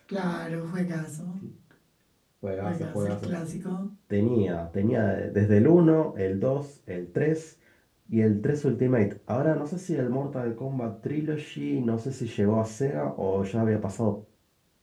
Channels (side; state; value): both; identical; correlation 1.00